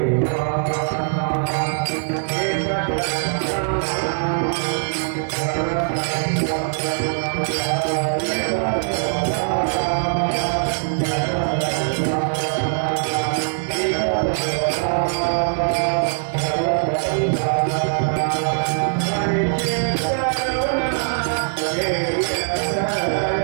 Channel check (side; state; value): left; silent; 58 dB below the other